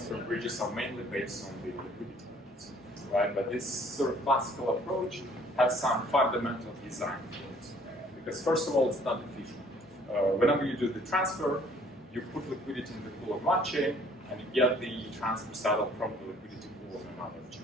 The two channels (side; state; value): both; normal; correlation 0.58